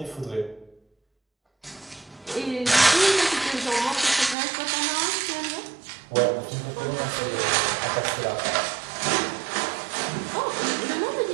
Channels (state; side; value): drops out; left; at 4.4 s